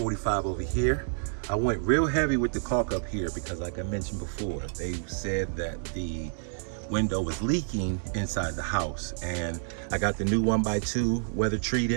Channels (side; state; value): left; silent; digital silence